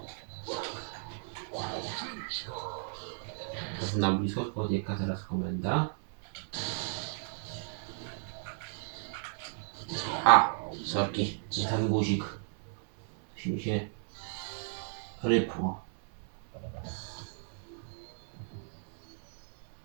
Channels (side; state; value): left; silent; 55 dB below the other